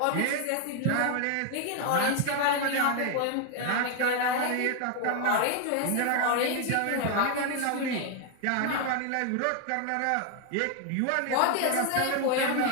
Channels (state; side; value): different; both; correlation 0.00